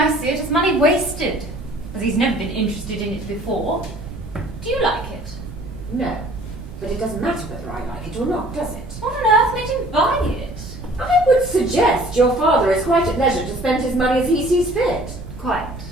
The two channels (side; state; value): right; noise; rumble, 12 dB below the sound